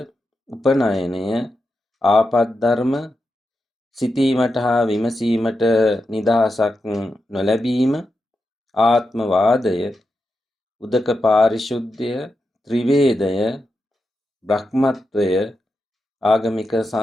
උපනයනය, ආපද්ධර්ම, සිතීමට හා විමසීමට නිදහසක් නොලැබීම, ආත්මවාදය, උදක පාරිශුද්ධය, ත්‍රිවේදය, බ්‍රහ්මත්වය, ආගමික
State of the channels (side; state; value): both; normal; correlation 0.88